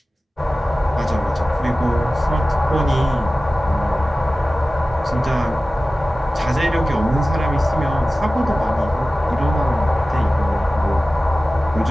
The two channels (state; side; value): normal; both; correlation 0.96